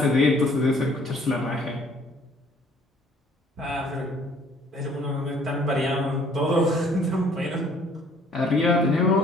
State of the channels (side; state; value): both; normal; correlation 0.58